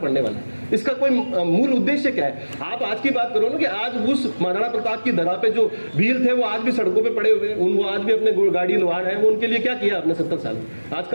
वाला है? इसका कोई मूल उद्देश्य क्या है? आप आज की बात करो ना कि आज उस महाराणा प्रताप की धरा पे जो वीर थे वो आज भी सड़कों पे पड़े हुए हैं, वो आज भी अपने गाड़ी लोहार है, वो उनके लिए क्या किया आपने 70 साल? आज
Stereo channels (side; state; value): both; inverted; correlation -1.00